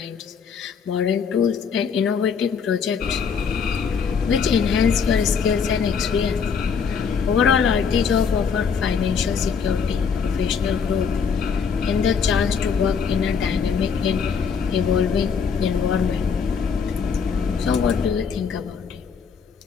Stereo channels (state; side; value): quieter; right; 6.2 dB